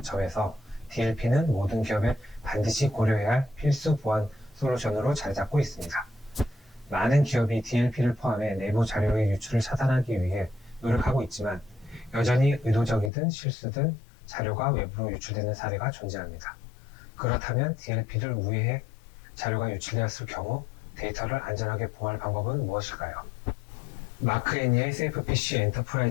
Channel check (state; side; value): drops out; right; at 13.1 s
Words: 점에서 DLP는 모든 기업에 반드시 고려해야 할 필수 보안 솔루션으로 자리 잡고 있습니다. 많은 기업이 DLP를 포함해 내부 자료의 유출을 차단하기 위해 노력하고 있지만 여전히 의도적이든 실수든 자료가 외부로 유출되는 사례가 존재합니다. 그렇다면 DLP를 우회해 자료가 유출되었을 경우 데이터를 안전하게 보호할 방법은 무엇일까요? 마크 애니의 SafePC